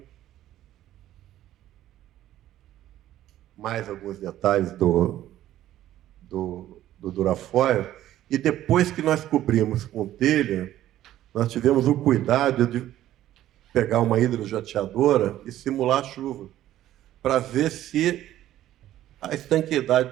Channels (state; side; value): quieter; left; 13.2 dB